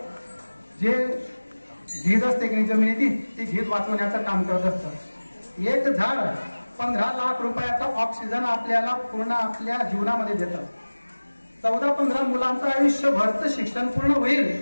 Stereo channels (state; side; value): inverted; both; correlation -1.00